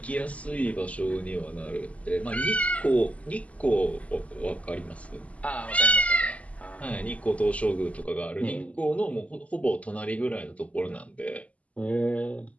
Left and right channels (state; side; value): late; right; 0.068 ms